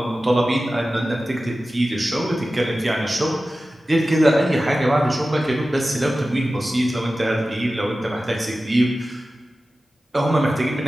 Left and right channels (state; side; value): normal; both; correlation 0.95